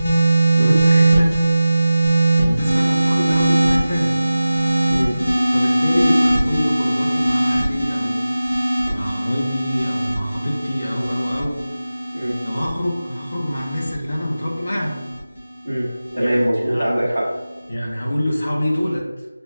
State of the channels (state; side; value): inverted; both; correlation -0.96